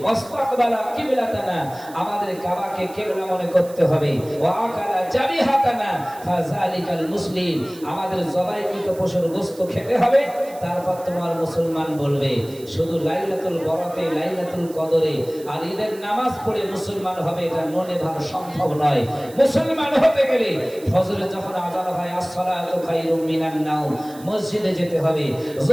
ওয়াসতাকবালা কিবলাতানা, আমাদের কাবাকে কিবলা মনে করতে হবে। ওয়া আকালা জাবিহাতানা ফাযালিকাল মুসলিম, আমাদের জবাইকৃত পশুর গোশত খেতে হবে। তারপর তোমার মুসলমান বলবে। শুধু লাইলাতুল বরাতে লাইলাতুল কদরে আর ঈদের নামাজ পড়ে মুসলমান হবে এটা মনে ভাব সম্ভব নয়। মুসলমান হতে গেলে ফজরে যখন আযান হয় আসসালাতু খায়রুম মিনান নাওম, মসজিদে যেতে হবে।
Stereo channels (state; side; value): noise; right; hiss, 21 dB below the sound